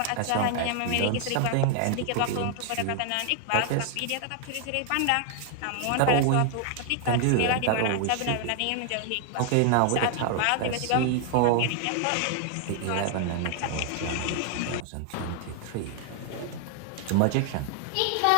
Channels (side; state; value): both; different; correlation 0.00